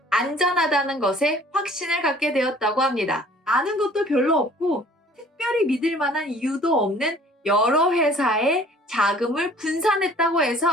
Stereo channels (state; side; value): normal; both; correlation 0.53